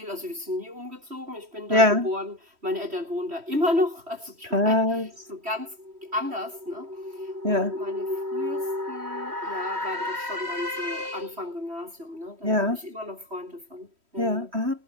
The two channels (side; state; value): left; late; 3.1 ms